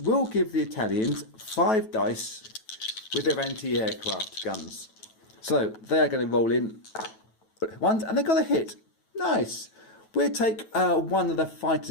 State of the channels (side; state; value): right; late; 9.2 ms